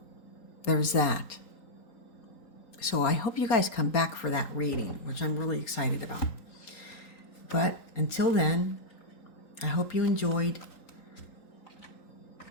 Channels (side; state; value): right; late; 3.9 ms